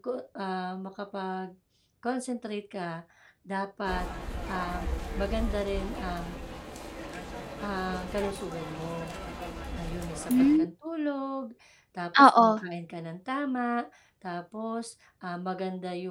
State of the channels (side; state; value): both; identical; correlation 1.00